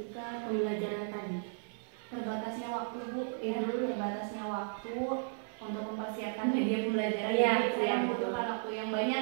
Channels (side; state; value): left; silent; 55 dB below the other